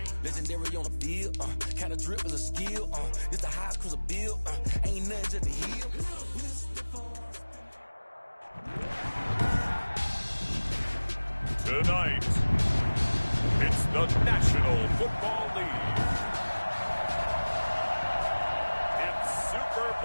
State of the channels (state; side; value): inverted; both; correlation -1.00